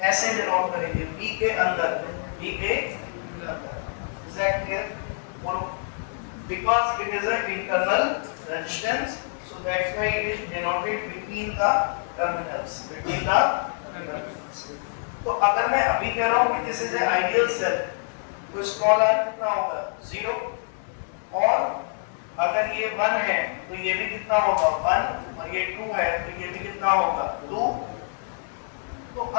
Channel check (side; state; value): right; silent; digital silence